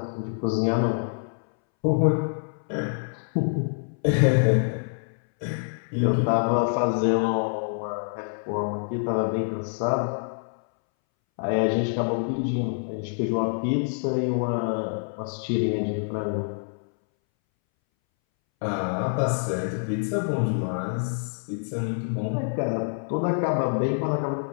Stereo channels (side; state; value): right; silent; 61 dB below the other